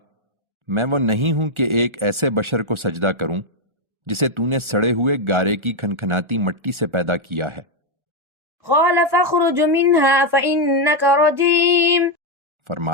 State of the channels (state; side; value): late; left; 1.4 ms